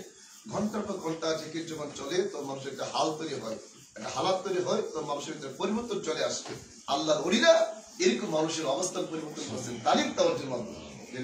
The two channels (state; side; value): identical; both; correlation 1.00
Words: ঘন্টার পর ঘন্টা জিকির যখন চলে তো মানুষের একটা হাল তৈরি হয়, একটা হালাত তৈরি হয়, তো মানুষের ভিতরে পরিবর্তন চলে আসবে। আল্লাহর ওলিরা এরকম মানুষের অবস্থান পরিবর্তন করছেন তালিম তাওয়াজ্জুর মাধ্যমে।